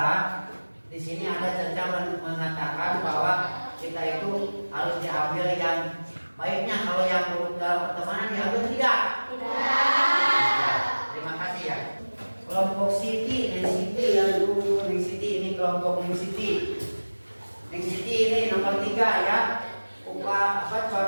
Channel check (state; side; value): inverted; both; correlation -1.00